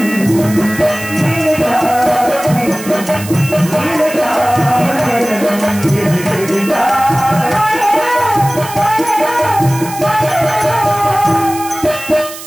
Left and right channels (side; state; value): right; noise; hiss, 13 dB below the sound